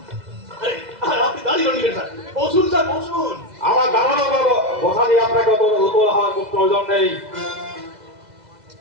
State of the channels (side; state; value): left; late; 2.0 ms